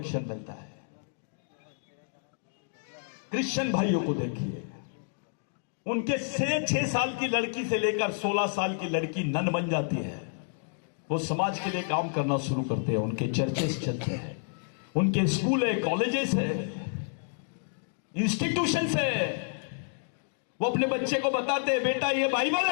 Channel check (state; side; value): silent; right; digital silence